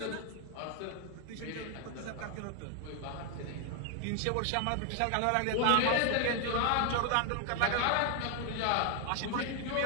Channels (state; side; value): different; both; correlation 0.00